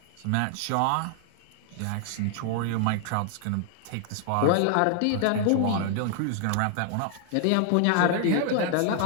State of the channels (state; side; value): different; both; correlation 0.00